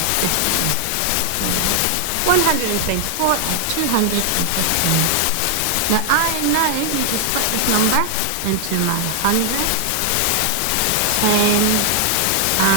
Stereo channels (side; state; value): both; different; correlation 0.00